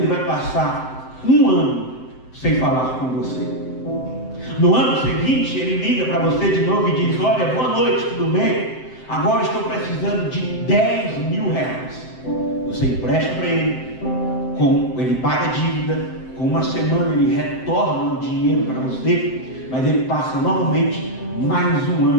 vai passar 1 ano sem falar com você. No ano seguinte ele liga para você de novo e diz: olha, boa noite, tudo bem? Agora estou precisando de 10 mil reais. Você empresta para ele, ele paga a dívida. Com uma semana ele retorna o dinheiro para você, mas ele passa novamente mais 1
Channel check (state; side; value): late; right; 7.8 ms